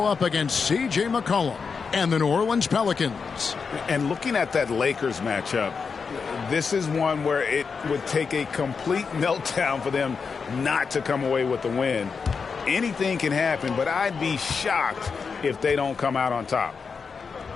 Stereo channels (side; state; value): right; quieter; 5.4 dB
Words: up against C.J. McCollum and the New Orleans Pelicans. And looking at that Lakers matchup, this is one where it would take a complete meltdown for them not to come away with the win. Anything can happen, but I'd be shocked if they don't come out on top.